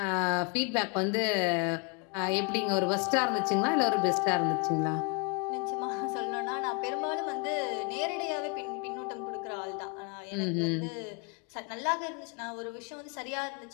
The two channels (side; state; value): right; quieter; 33.4 dB